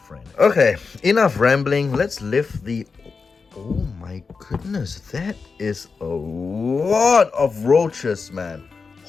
Okay, enough rambling. Let's lift the... Oh my goodness, that is a lot of roaches, man.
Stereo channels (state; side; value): quieter; right; 4.8 dB